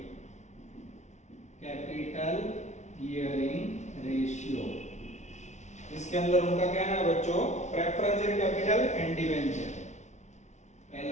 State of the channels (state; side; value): late; right; 0.33 ms